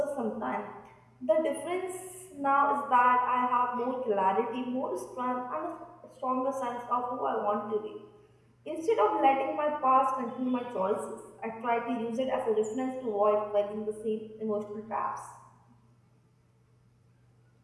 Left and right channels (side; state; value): both; identical; correlation 1.00